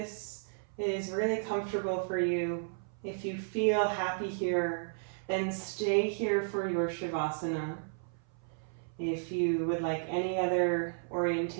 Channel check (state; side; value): silent; left; 55 dB below the other